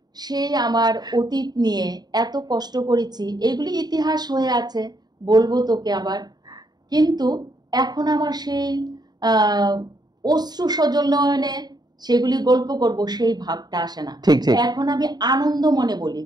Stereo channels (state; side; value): late; left; 0.20 ms